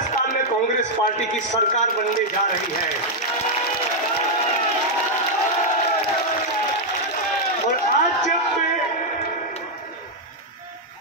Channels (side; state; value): both; normal; correlation -0.02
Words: में कांग्रेस पार्टी की सरकार बनने जा रही है। और आज जब मैं